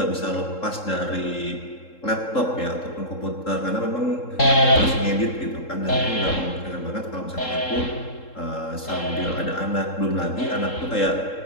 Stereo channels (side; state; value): right; late; 3.7 ms